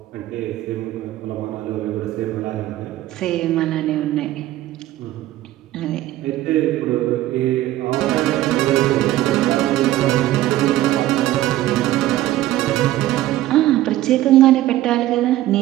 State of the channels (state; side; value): quieter; left; 14.9 dB